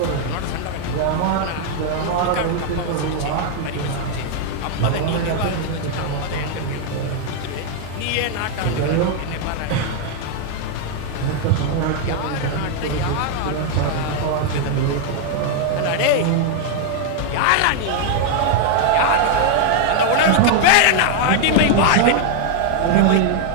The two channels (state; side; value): different; both; correlation 0.00